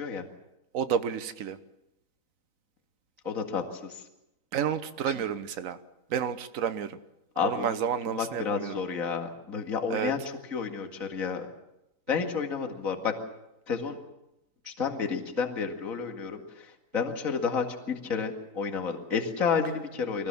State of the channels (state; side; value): late; left; 3.9 ms